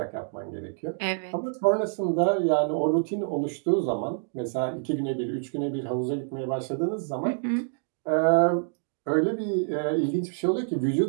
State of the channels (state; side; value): silent; left; digital silence